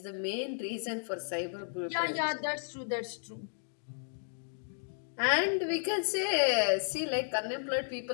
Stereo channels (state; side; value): silent; right; digital silence